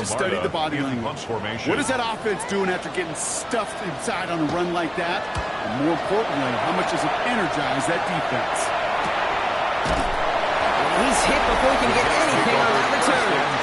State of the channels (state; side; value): identical; both; correlation 1.00